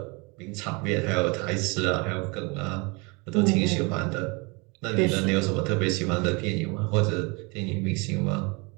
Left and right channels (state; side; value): quieter; left; 28.9 dB